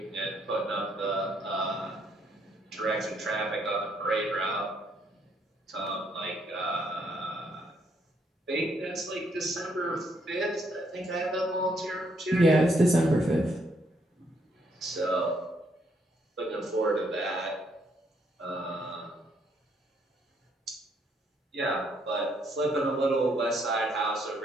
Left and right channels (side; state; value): both; normal; correlation 0.72